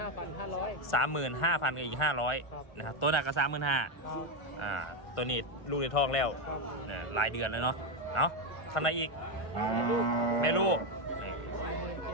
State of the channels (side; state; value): right; late; 1.5 ms